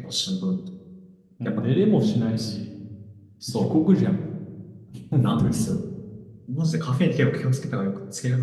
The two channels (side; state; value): both; identical; correlation 1.00